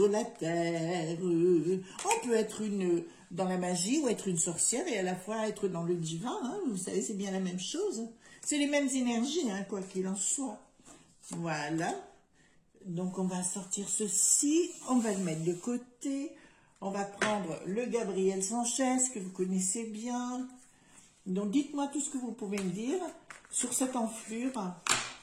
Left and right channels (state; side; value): identical; both; correlation 1.00